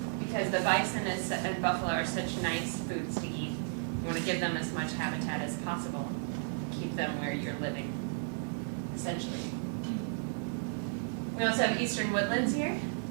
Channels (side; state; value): left; silent; digital silence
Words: the bison and buffalo are such nice foods to eat. You want to give them as much habitat as possible, keep them where you're living, essentially. We also have eastern woodlands here.